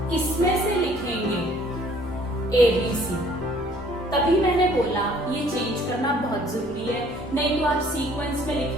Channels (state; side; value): normal; both; correlation 0.57